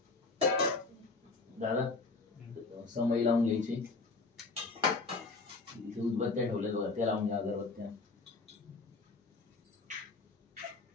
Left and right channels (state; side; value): quieter; right; 3.8 dB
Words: दादा समय लावून घ्यायची. इथे उदबत्त्या ठेवल्या बघा, त्या लावून घ्या अगरबत्त्या.